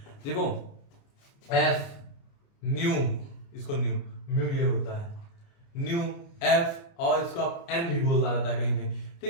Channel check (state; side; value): late; right; 29 ms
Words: देखो एफ न्यू, इसको न्यू, म्यू ये होता है न्यू एफ, और इसको आप एन भी बोलता रहता है कहीं कहीं,